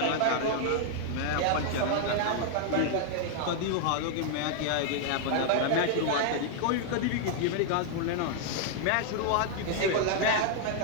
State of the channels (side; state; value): both; different; correlation -0.01